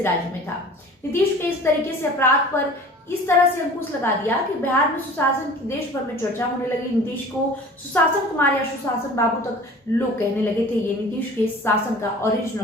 राज्य में था। नीतीश के इस तरीके से अपराध पर इस तरह से अंकुश लगा दिया कि बिहार में सुशासन की देश भर में चर्चा होने लगी। नीतीश को सुशासन कुमार या सुशासन बाबू तक लोग कहने लगे थे। ये नीतीश के शासन का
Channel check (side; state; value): both; normal; correlation 0.44